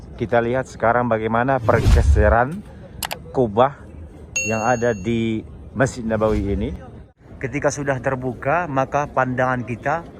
kita lihat sekarang bagaimana pergeseran kubah yang ada di Masjid Nabawi ini. Ketika sudah terbuka, maka pandangan kita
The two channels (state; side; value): identical; both; correlation 1.00